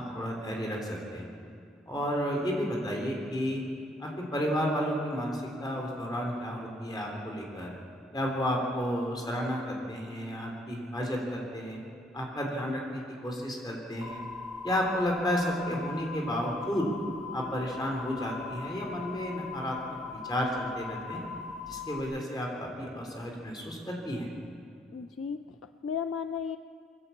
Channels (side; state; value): both; normal; correlation 0.68